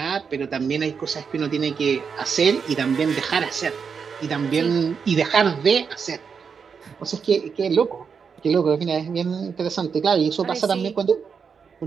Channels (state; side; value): quieter; left; 6.1 dB